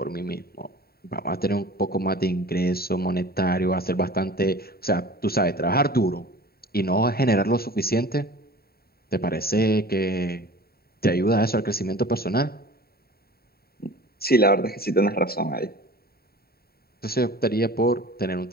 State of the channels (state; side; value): late; right; 0.45 ms